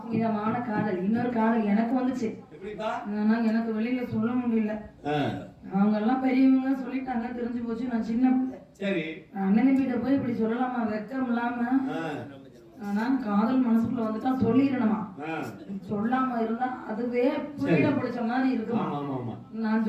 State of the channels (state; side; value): identical; both; correlation 1.00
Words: காதல். இன்னொரு காதல் எனக்கு வந்துச்சு. ஆனா எனக்கு வெளியில சொல்ல முடியல. அவங்க எல்லாம் பெரியவங்க சொல்லிட்டாங்க, தெரிஞ்சு போச்சு. நான் சின்ன பிள்ளை. சரி, அண்ணன் கிட்ட போய் இப்படி சொல்லலாமா? வெக்கம் இல்லாம. ஆனா காதல் மனசுக்குள்ள வந்துட்டா சொல்லிடணுமா? சொல்லாம இருந்தா அதுவே புரியல பிடிச்ச மாதிரி இருக்குமா? நான்